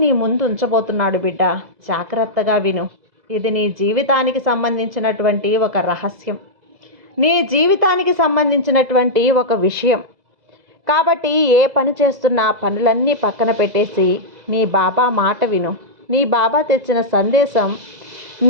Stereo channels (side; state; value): left; late; 2.0 ms